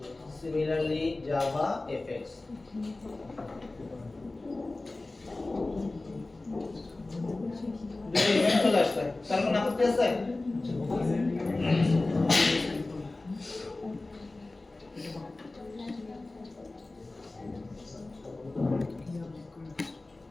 similarly JavaFX দুটো ইভেন্ট চলে আসছে তার কোনো আপত্তি আছে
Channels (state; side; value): quieter; right; 3.1 dB